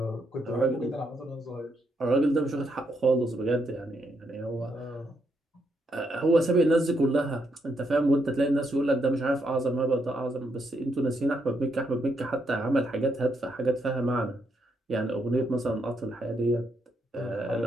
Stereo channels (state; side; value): normal; both; correlation 0.77